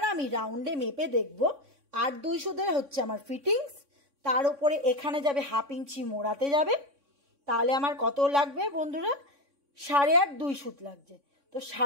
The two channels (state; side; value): late; left; 3.6 ms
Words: আমি রাউন্ডে মেপে দেখব 8-2 সুতের হচ্ছে আমার ফিটিংস, তার উপরে এখানে যাবে 1/2 ইঞ্চি মোড়াতে যাবে। তাহলে আমার কত লাগবে বন্ধুরা, 8.5-2 সুত লাগছে। তো